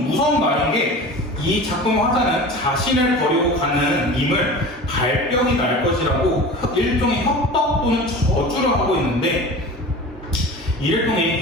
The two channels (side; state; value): both; normal; correlation 0.36